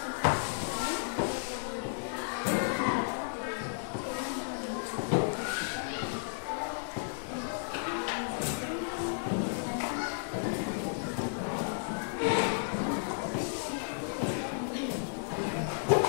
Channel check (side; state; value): right; silent; digital silence